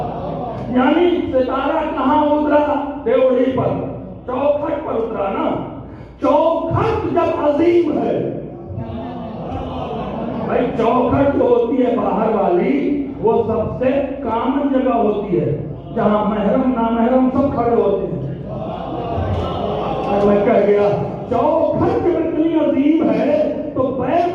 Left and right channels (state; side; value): identical; both; correlation 1.00